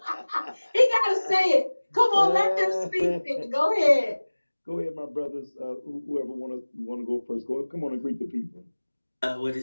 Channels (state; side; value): inverted; both; correlation -1.00